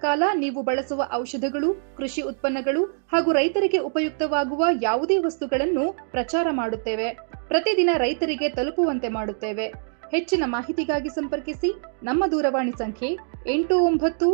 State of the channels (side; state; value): left; silent; 62 dB below the other